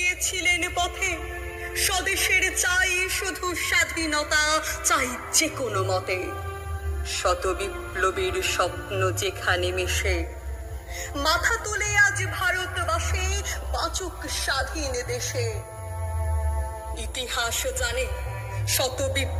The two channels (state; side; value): identical; both; correlation 1.00